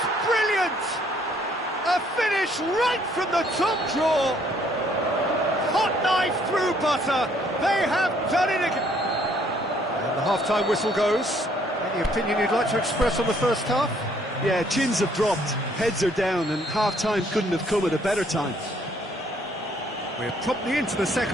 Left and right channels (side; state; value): both; normal; correlation 0.65